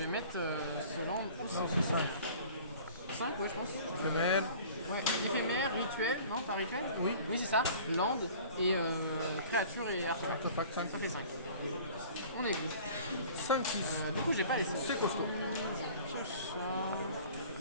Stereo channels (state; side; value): inverted; both; correlation -0.46